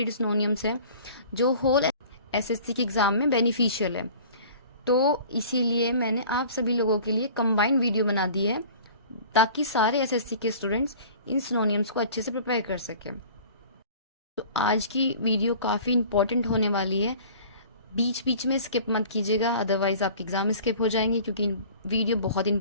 सिनोनिम्स है जो होल SSC के एग्ज़ाम में बेनिफिशियल है। तो इसीलिए मैंने आप सभी लोगों के लिए कंबाइंड वीडियो बना दी है ताकि सारे SSC के स्टूडेंट्स इन सिनोनिम्स को अच्छे से प्रिपेयर कर सकें। तो आज की वीडियो काफ़ी इंपॉर्टेंट होने वाली है, बीच बीच में स्किप मत कीजिएगा, अदरवाइज आपके एग्जाम स्किप हो जाएंगे क्योंकि वीडियो बहुत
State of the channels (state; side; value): inverted; both; correlation -0.45